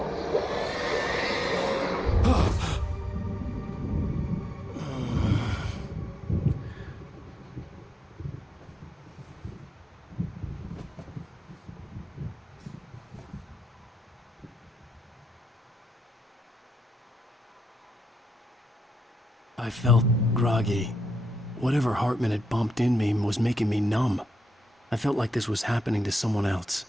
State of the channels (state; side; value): normal; both; correlation 0.86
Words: I felt groggy. Whatever Hartman had bumped in me was making me numb. I felt like this was happening to someone else.